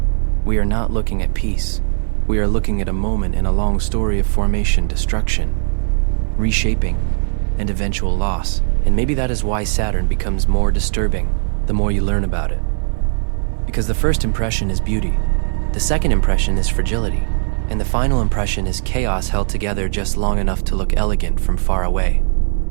We are not looking at peace. We are looking at a moment in a long story of formation, destruction, reshaping, and eventual loss. And maybe that is why Saturn becomes more disturbing the more you learn about it. Because the first impression is beauty, the second impression is fragility, and the final impression is chaos held together just long enough to look elegant from far away.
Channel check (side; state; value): left; silent; digital silence